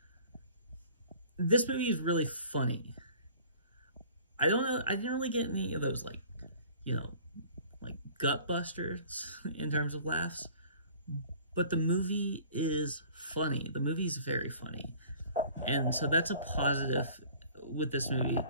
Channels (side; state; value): both; inverted; correlation -0.49